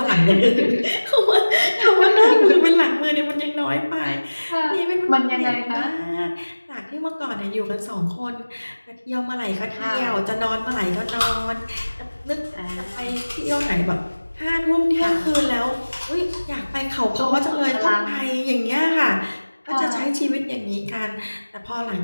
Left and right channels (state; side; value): inverted; both; correlation -1.00